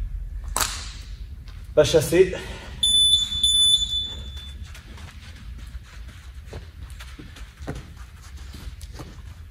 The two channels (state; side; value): identical; both; correlation 1.00